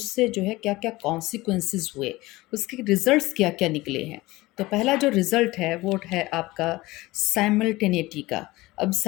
जो है क्या क्या कॉन्सिक्वेंसेस हुए, उसके रिजल्ट्स क्या क्या निकले हैं। तो पहला जो रिज़ल्ट है वो है आपका साइमल्टेनिटी का। अब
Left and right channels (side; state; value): right; quieter; 19.8 dB